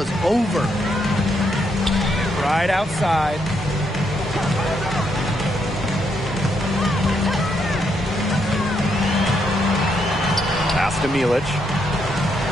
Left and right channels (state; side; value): normal; both; correlation 0.77